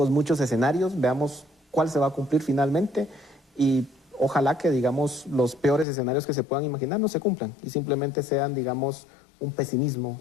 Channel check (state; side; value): drops out; right; at 5.9 s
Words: muchos escenarios. Veamos cuál se va a cumplir finalmente y ojalá que, digamos, los peores escenarios que se puedan imaginar no se cumplan y simplemente sean, digamos, un pesimismo